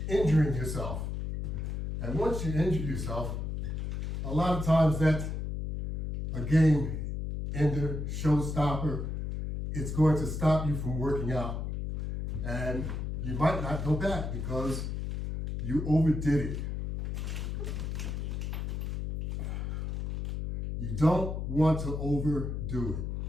injuring yourself. And once you injure yourself, a lot of times that's a game ender, showstopper. It's going to stop you from working out. And you might not go back because you overdid it. You don't want to overdo it.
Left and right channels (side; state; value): left; noise; hum, 3 dB below the sound